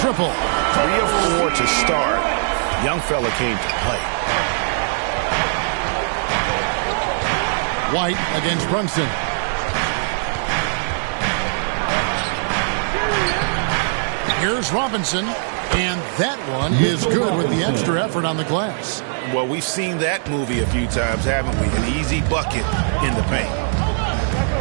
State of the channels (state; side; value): silent; left; digital silence